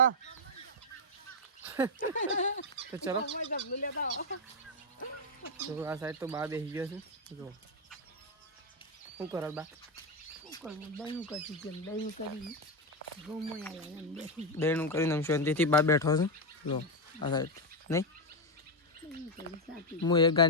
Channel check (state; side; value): normal; both; correlation 0.04